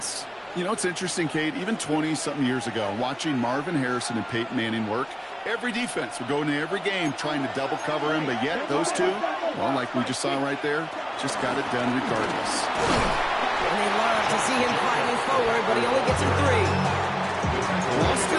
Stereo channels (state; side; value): identical; both; correlation 1.00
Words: You know, it's interesting, Kate, even 20-something years ago, watching Marvin Harrison and Peyton Manning work, every defense would go into every game trying to double cover him, but yet those two, well, like we just saw right there, just got it done regardless. And they love to see him fighting forward, but he only gets a 3. Well, I'll steal